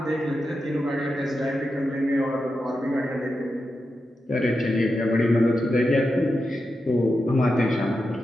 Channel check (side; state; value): both; normal; correlation 0.89